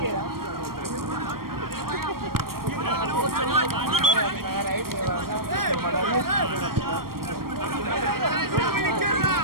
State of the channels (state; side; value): late; left; 0.93 ms